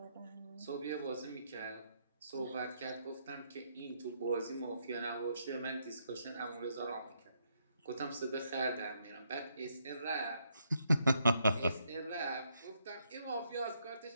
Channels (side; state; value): both; inverted; correlation -0.75